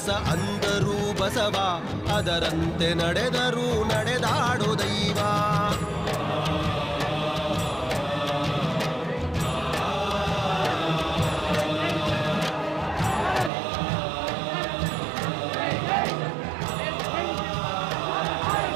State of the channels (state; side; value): drops out; left; at 13.5 s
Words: ಅಂದರು ಬಸವ, ಅದರಂತೆ ನಡೆದರು ನಡೆದಾಡೋ ದೈವ.